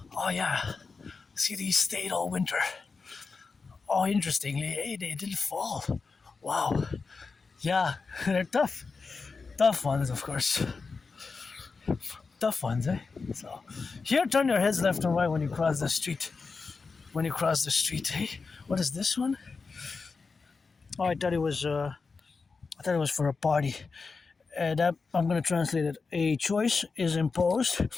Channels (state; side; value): quieter; right; 4.6 dB